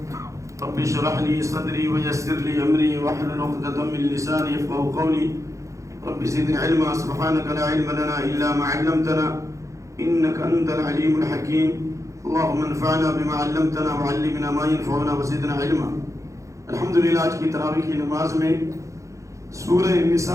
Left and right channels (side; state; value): left; late; 0.15 ms